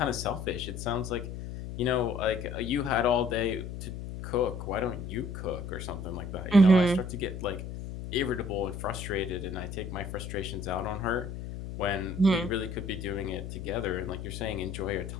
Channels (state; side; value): noise; left; hum, 8 dB below the sound